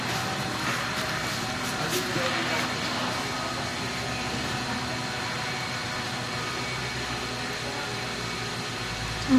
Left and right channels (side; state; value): both; identical; correlation 1.00